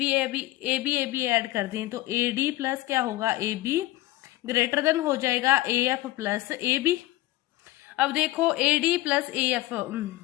ऐड कर दें, तो ए डी प्लस क्या होगा, ए बी ग्रेटर देन हो जाएगा A F plus A B. अब देखो A D plus A F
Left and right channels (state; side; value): quieter; right; 17.3 dB